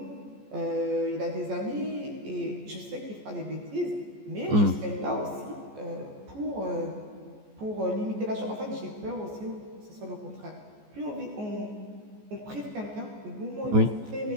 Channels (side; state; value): left; late; 14 ms